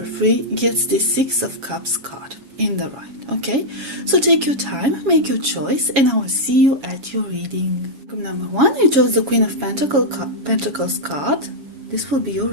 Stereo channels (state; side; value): late; left; 7.3 ms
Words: 3 gets the Six of Cups card in the right. Okay, so take your time, make your choice, and I will see you at your reading. Group number 1, you chose the Queen of Pentacles card. This will be your